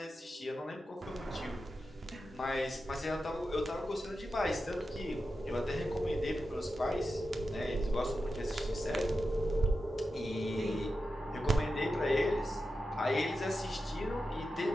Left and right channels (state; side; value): normal; both; correlation 0.91